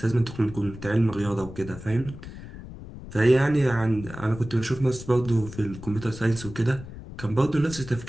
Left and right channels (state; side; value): noise; left; rumble, 14 dB below the sound